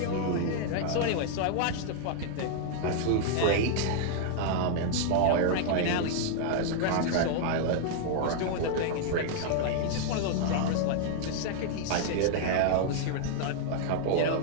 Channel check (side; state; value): both; different; correlation -0.01